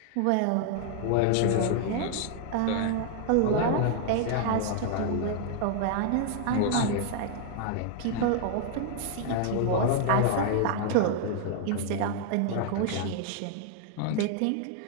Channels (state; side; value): different; both; correlation 0.00